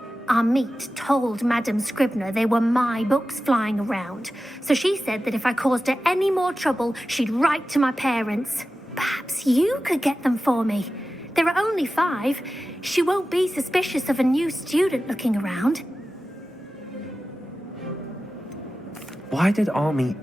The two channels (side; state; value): both; normal; correlation 0.94